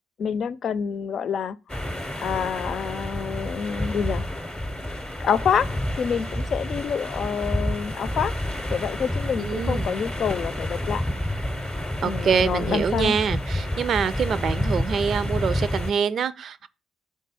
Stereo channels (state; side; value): normal; both; correlation 0.78